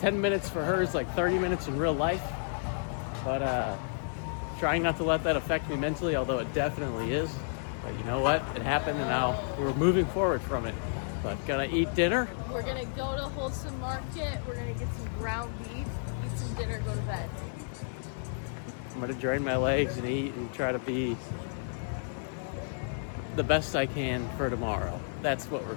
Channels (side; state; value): right; silent; 57 dB below the other